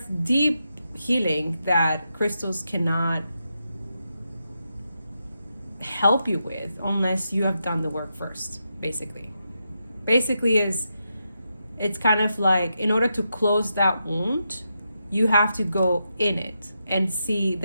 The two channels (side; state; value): both; inverted; correlation -0.85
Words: deep healing that crystals cannot help you with unless you have done the work first, basically. It's kind of like, in order to close that wound, you have to go in it and see